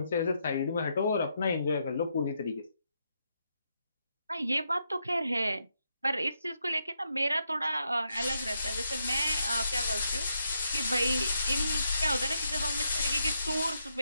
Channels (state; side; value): inverted; both; correlation -0.80